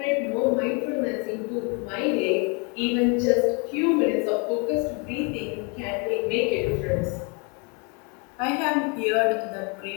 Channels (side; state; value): right; quieter; 33.4 dB